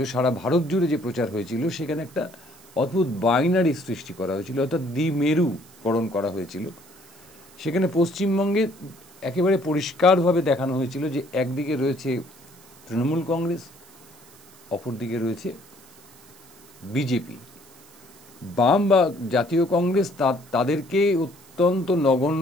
সারা ভারত জুড়ে যে প্রচার হয়েছিল, সেখানে একটা অদ্ভুত বাইনারি সৃষ্টি করা হয়েছিল, অর্থাৎ দ্বিমেরুকরণ করা হয়েছিল। সেখানে পশ্চিমবঙ্গে একেবারে পরিষ্কারভাবে দেখানো হয়েছিল যে একদিকে রয়েছে তৃণমূল কংগ্রেস, অপরদিকে রয়েছে বিজেপি। বাম বা জাতীয় কংগ্রেস তাদেরকে অত্যন্ত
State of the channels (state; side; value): noise; right; hiss, 25 dB below the sound